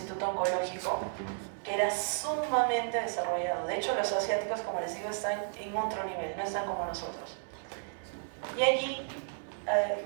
oncológico que era sumamente desarrollado. De hecho, los asiáticos, como les digo, están en otro nivel, no están como nosotros. Y allí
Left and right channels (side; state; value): left; silent; digital silence